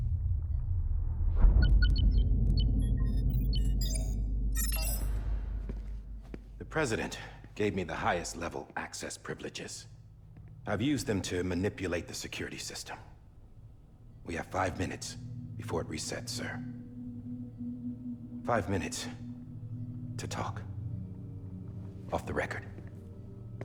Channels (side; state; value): both; identical; correlation 1.00